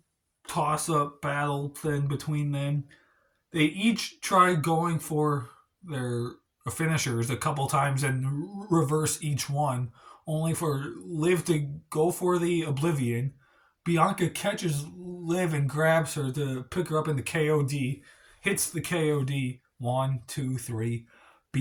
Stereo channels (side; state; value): both; identical; correlation 1.00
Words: toss up battle thing between them. They each try going for their finishers a couple times and reverse each one, only for Liv to go for the Oblivion. Bianca catches Liv and grabs her to pick her up in the KOD, hits the KOD. 1, 2, 3.